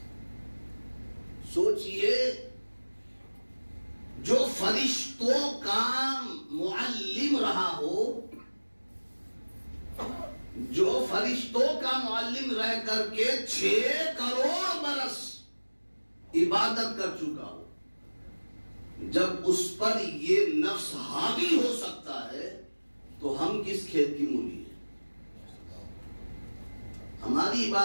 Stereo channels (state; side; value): inverted; both; correlation -1.00